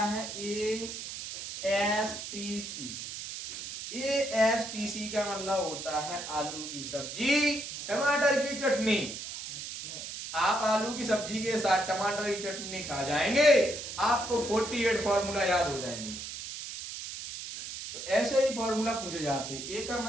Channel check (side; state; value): right; noise; hiss, 8 dB below the sound